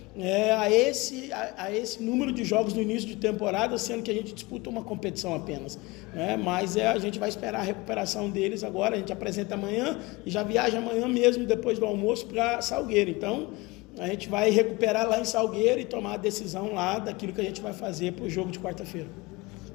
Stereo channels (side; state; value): right; quieter; 23.1 dB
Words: a esse número de jogos no início de temporada, sendo que a gente disputa uma competição apenas, né? Mas a gente vai esperar a recuperação deles agora, a gente apresenta amanhã e já viaja amanhã mesmo, depois do almoço, para Salgueiro. Então, a gente vai recuperar lá em Salgueiro e tomar a decisão lá daquilo que a gente vai fazer para o jogo de quarta-feira.